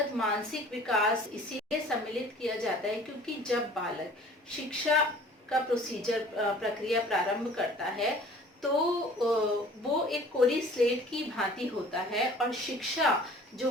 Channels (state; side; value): normal; both; correlation 0.49